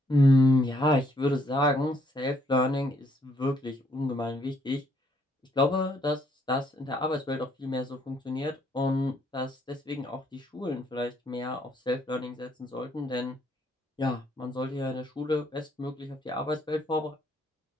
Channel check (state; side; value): normal; both; correlation 0.69